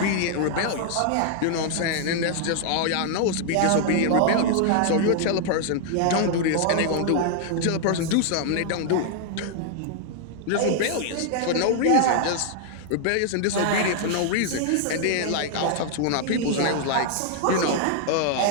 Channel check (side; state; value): both; different; correlation -0.01